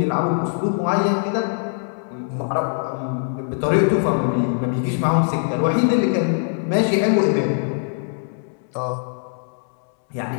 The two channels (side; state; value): right; silent; 64 dB below the other